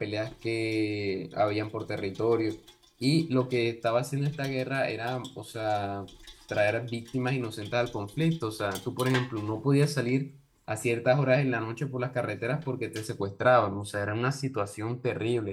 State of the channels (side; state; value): both; identical; correlation 1.00